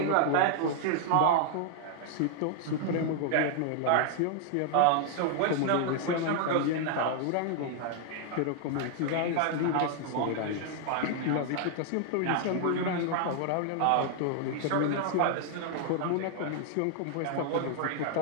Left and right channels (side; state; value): both; different; correlation 0.00